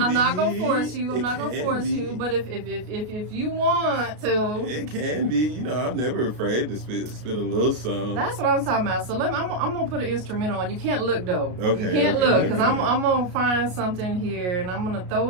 gonna force you. I'm not gonna force you. But if you want to, it can be. I'm never afraid to spit a little song. That's what I'm talking about. So I'm gonna put an instrumental on. You can't look though. Okay. You can't look because I'm gonna find something here and I'm gonna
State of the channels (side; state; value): left; late; 33 ms